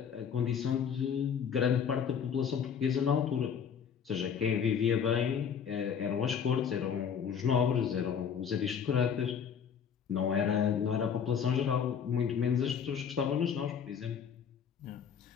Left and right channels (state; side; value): quieter; right; 7.4 dB